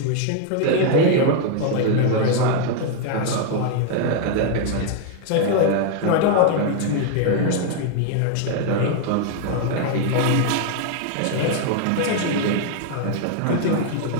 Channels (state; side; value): different; both; correlation 0.00